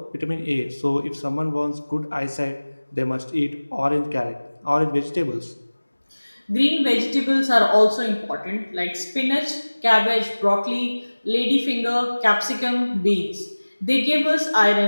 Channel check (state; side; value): inverted; both; correlation -1.00